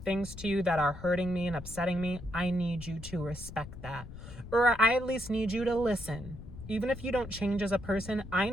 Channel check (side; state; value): left; noise; rumble, 13 dB below the sound